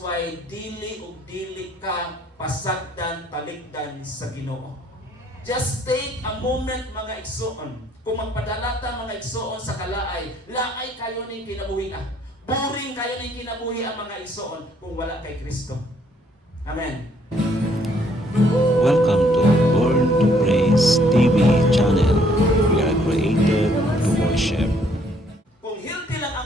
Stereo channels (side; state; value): both; normal; correlation 0.66